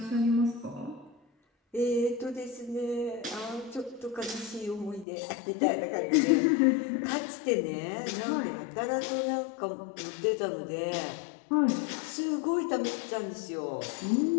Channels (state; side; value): drops out; right; at 5.1 s